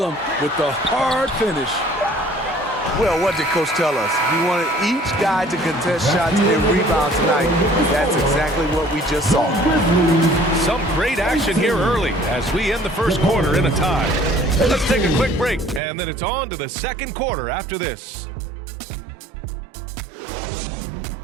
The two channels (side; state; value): left; drops out; at 15.8 s